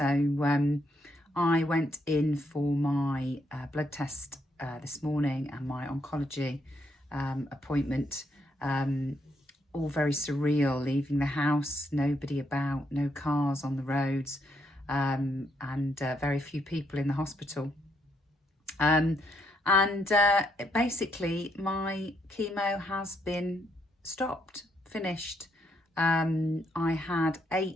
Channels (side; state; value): both; normal; correlation 0.75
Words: I went in for my blood test this morning and my oncology appointment, all very surreal, leaving the house, nobody about, no cars on the roads, and very few people in the hospital. Basically my chemo has been stopped, finished. I had